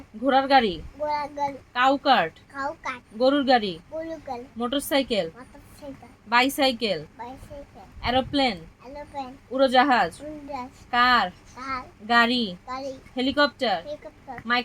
ঘোড়ার গাড়ি, ঘোড়াগাড়ি, কাউ কার্ট, কাউকাট, গরুর গাড়ি, বুলুগাল, motorcycle, motorcycle, bicycle, bicycle, aeroplane, aeroplane, উড়োজাহাজ, উড়োজাহাজ, কার, কার, গাড়ি, গাড়ি, helicopter, helicopter,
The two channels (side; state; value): both; identical; correlation 1.00